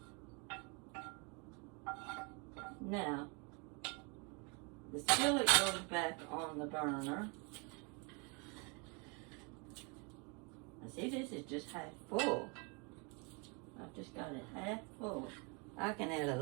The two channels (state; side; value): quieter; left; 32.8 dB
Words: Now, the skillet goes back on the burner. Now see, this is just half full. I've just got it half full. I can add a